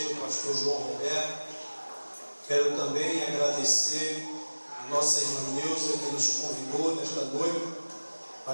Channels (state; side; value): inverted; both; correlation -1.00